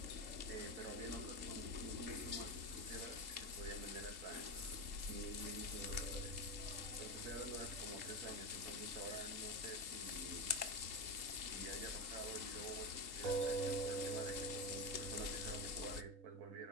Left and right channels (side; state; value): left; late; 3.8 ms